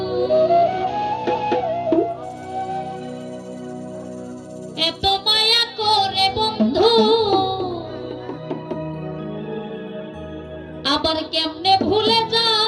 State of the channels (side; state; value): both; identical; correlation 1.00